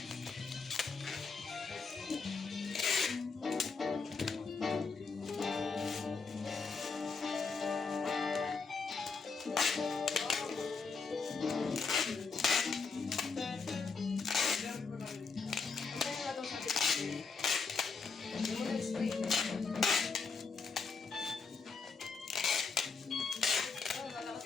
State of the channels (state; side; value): quieter; right; 4.7 dB